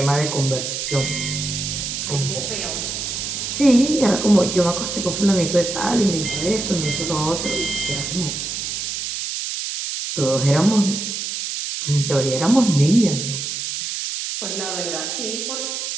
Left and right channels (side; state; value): right; noise; hiss, 4 dB below the sound